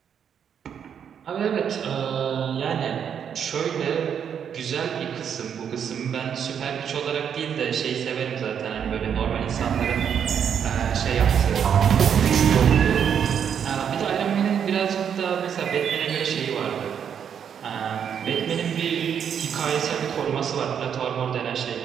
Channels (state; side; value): quieter; left; 8.1 dB